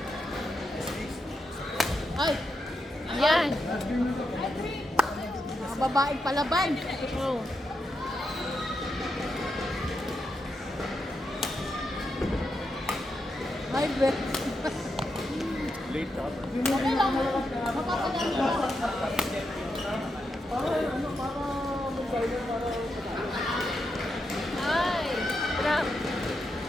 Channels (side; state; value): both; normal; correlation 0.85